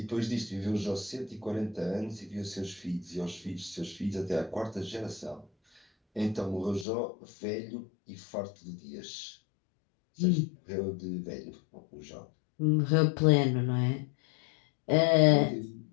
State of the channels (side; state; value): right; drops out; at 6.9 s